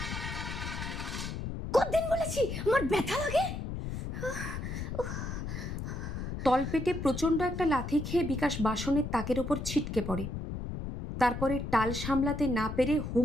কতদিন বলেছি আমার ব্যথা লাগে। তলপেটে প্রচণ্ড একটা লাথি খেয়ে বিকাশ বাসনের তাকের ওপর ছিটকে পড়ে। তারপরে টাল সামলাতে না পেরে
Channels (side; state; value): left; noise; rumble, 5 dB below the sound